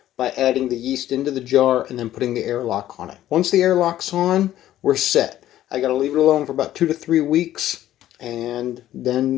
by adding the yeast into the jar and then putting the airlock on it. Once the airlock's on, we're set. I got to leave it alone for about 2 to 3 weeks, and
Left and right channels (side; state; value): right; quieter; 13.1 dB